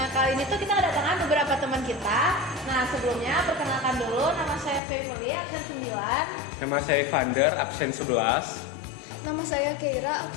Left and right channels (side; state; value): right; drops out; at 4.8 s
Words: kali ini tuh kita kedatangan beberapa teman kita. Nah, sebelumnya perkenalkan dulu, nama saya Fevoli, absen 9. Nama saya Vander, absen 11. Nama saya Keira,